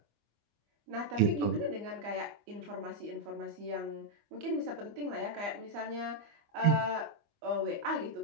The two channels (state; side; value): late; left; 25 ms